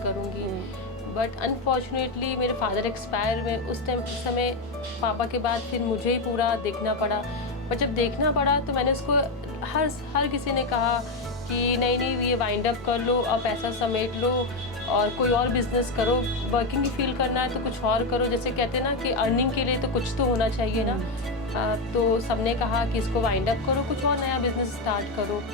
करूँगी। बट अनफॉर्चुनेटली मेरे फादर एक्सपायर हुए उस समय पापा के बाद फिर मुझे ही पूरा देखना पड़ा। पर जब देखना पड़ा तो मैंने उसको हर किसी ने कहा कि नहीं ये वाइंड अप कर लो, अब पैसा समेट लो और कोई और बिज़नेस करो। वर्किंग ही फील करना है तो कुछ और करो, जैसे कहते हैं ना कि अर्निंग के लिए तो कुछ तो होना चाहिए ना। तो सबने कहा कि इसको वाइंड अप करो, कुछ और नया बिज़नेस स्टार्ट करो।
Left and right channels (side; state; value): right; quieter; 3.1 dB